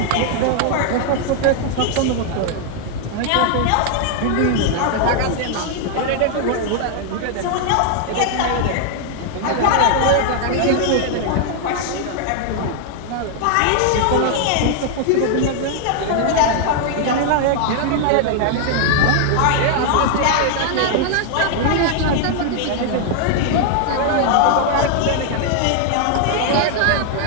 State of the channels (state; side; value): different; both; correlation 0.00